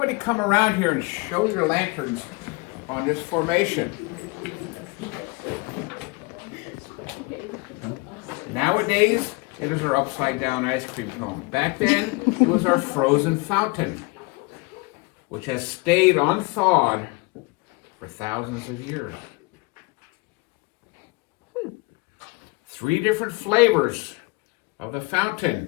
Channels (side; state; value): right; quieter; 26.5 dB